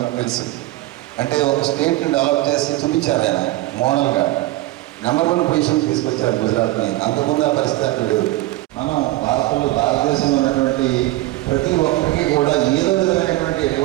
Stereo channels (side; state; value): left; quieter; 17.7 dB